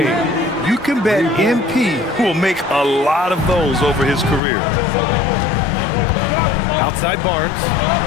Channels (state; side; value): drops out; right; at 4.4 s